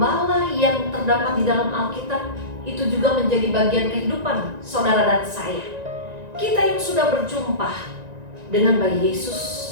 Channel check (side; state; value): left; late; 1.9 ms